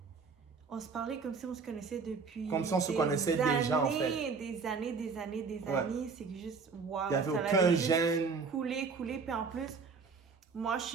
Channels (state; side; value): quieter; left; 5.1 dB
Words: on se parlait comme si on se connaissait depuis comme si on se connaissait déjà, en fait. Des années. C'est que juste, wow. Il n'y avait aucun gêne. Coulé. Puis en plus, moi, je